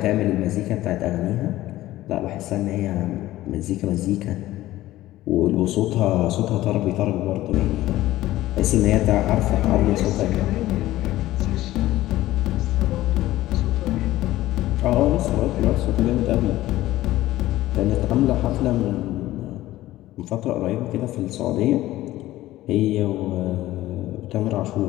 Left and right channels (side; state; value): right; quieter; 15.8 dB